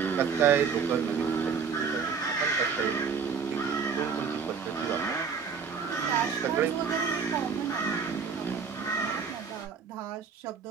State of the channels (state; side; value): quieter; left; 6.0 dB